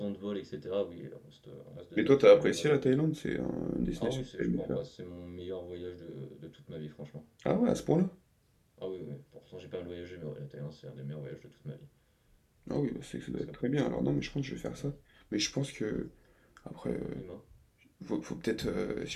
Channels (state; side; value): identical; both; correlation 1.00